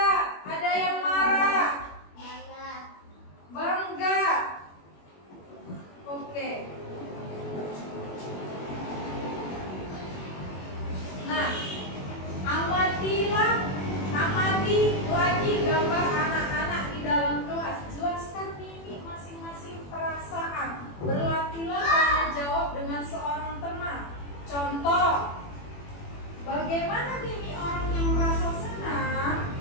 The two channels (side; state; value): right; late; 21 ms